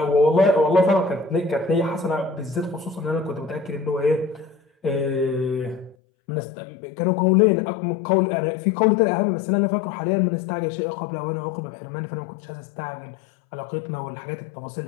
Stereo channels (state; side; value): drops out; right; at 6.0 s